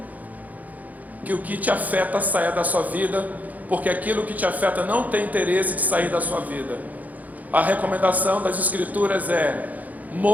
que o que te afeta saia da sua vida, porque aquilo que te afeta não tem interesse de sair da sua vida. A recomendação das Escrituras é:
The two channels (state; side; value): late; left; 0.078 ms